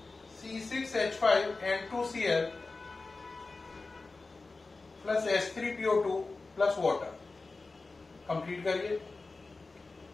C6H5N2Cl plus H3PO2 plus water, complete करिए।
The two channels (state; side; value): quieter; right; 3.7 dB